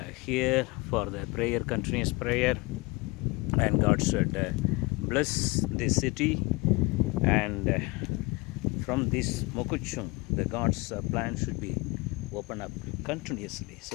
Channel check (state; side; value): quieter; right; 25.3 dB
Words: here for the prayer, continuous prayer, and God should bless this city, and from this Mokuchung the God's plan should be open up continuously.